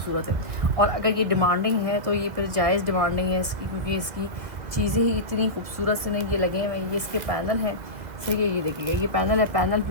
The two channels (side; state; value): left; late; 1.6 ms